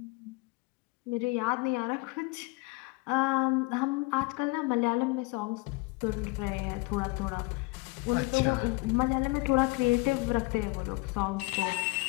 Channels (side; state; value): right; quieter; 25.9 dB